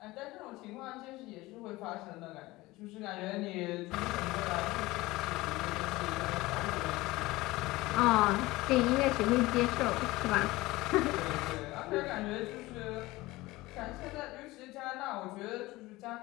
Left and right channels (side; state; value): right; quieter; 19.8 dB